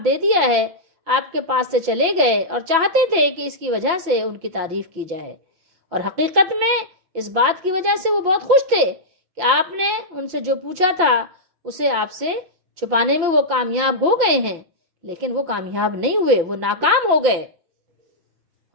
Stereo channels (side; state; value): left; late; 6.0 ms